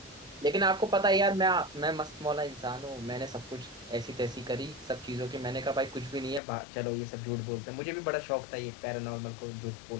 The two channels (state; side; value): drops out; right; at 6.4 s